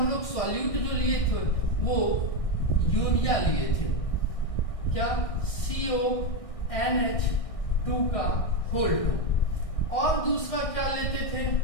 लोग सॉल्यूट जो लिए थे वो यूरिया लिए थे, क्या? CONH2 का होल 2। और दूसरा क्या लेते थे?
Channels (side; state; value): right; late; 1.6 ms